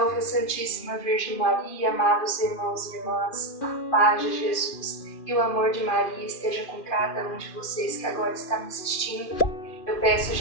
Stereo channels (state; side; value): late; right; 2.4 ms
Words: a Santíssima Virgem Maria, amados irmãos e irmãs, a paz de Jesus e o amor de Maria esteja com cada um de vocês que agora está me assistindo. Eu peço